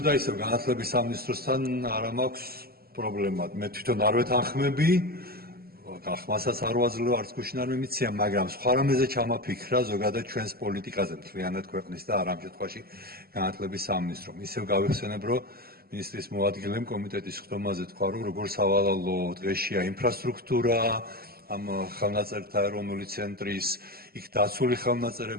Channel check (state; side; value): late; left; 0.45 ms